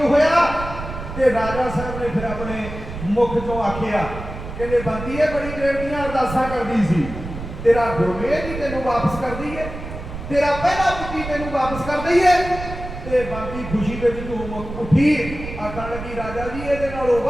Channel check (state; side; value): noise; right; rumble, 9 dB below the sound